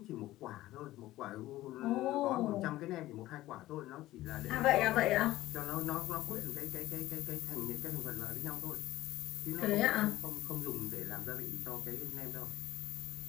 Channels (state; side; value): quieter; right; 16.0 dB